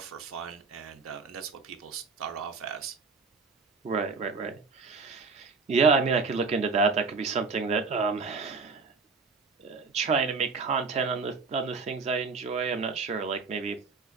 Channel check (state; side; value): quieter; left; 4.5 dB